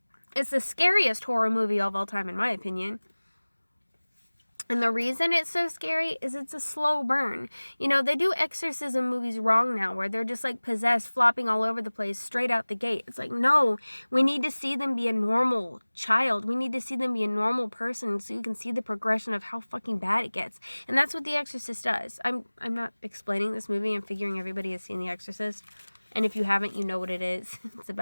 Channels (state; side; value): inverted; both; correlation -1.00